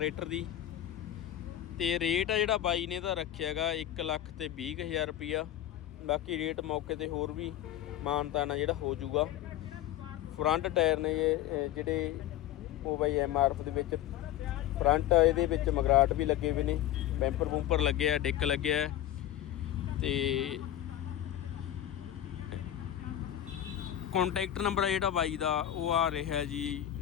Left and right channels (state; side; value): quieter; right; 12.3 dB